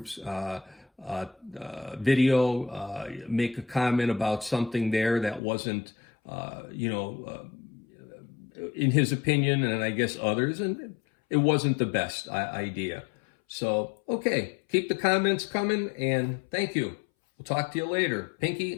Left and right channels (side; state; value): right; drops out; at 5.4 s